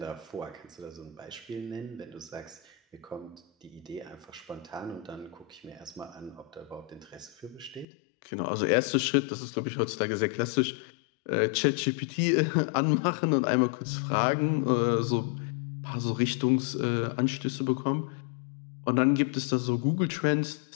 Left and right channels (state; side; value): drops out; right; at 7.9 s